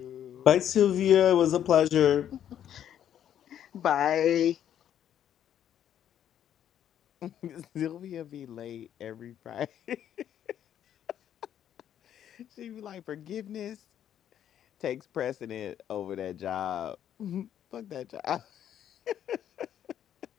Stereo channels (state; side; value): quieter; right; 10.2 dB